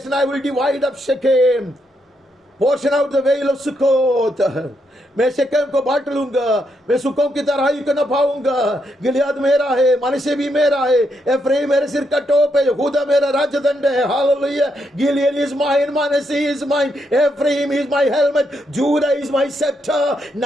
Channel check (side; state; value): both; normal; correlation 0.79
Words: I will divide up Shechem, portion out the well of Succoth. मैं शेकेम को बांट लूंगा, मैं सुकों की तराई को न पाऊंगा. गिलियाद मेरा है, मनश्शे भी मेरा है. एफ्राइम मेरे सिर का टोप है, यहूदा मेरा राजदंड है. हालेलुया. गिलियड इज माइन, मनश्शे is mine, Ephraim is my helmet, Judah is my scepter.